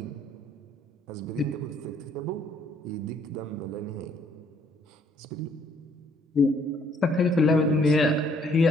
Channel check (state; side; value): normal; both; correlation 0.65